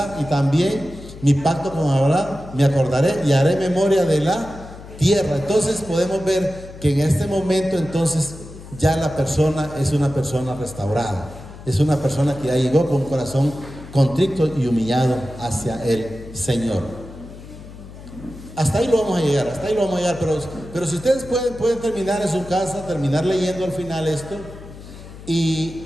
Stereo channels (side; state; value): left; noise; hum, 16 dB below the sound